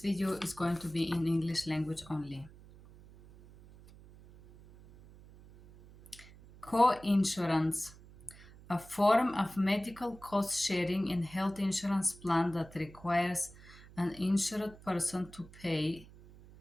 video is going to be in English language only. Co-insurance, a form of medical cost sharing in health insurance plan that requires an insured person to pay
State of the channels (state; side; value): noise; right; hum, 21 dB below the sound